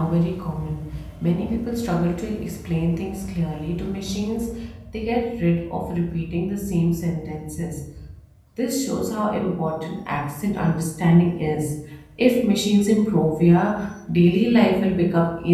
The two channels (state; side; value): identical; both; correlation 1.00